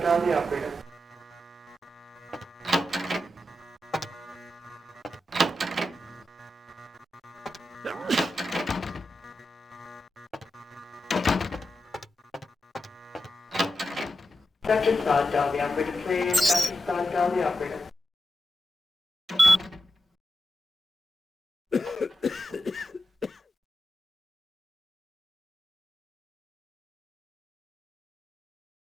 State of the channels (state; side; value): normal; both; correlation 0.88